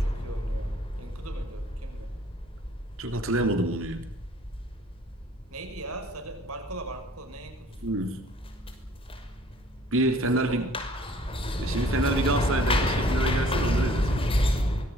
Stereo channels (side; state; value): both; normal; correlation 0.56